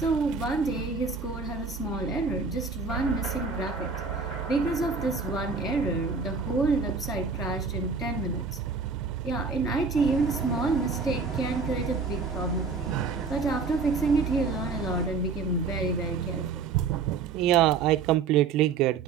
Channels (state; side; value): quieter; left; 4.9 dB